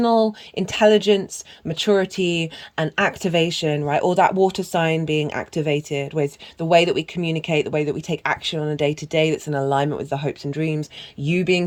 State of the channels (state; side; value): identical; both; correlation 1.00